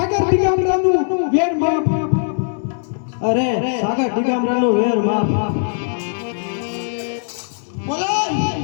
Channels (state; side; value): silent; right; 61 dB below the other